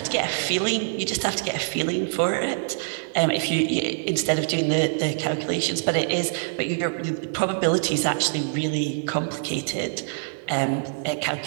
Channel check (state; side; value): silent; left; digital silence